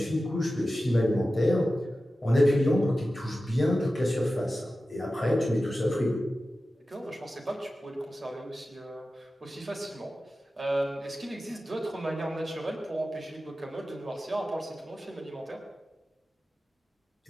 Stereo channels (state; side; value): normal; both; correlation 0.94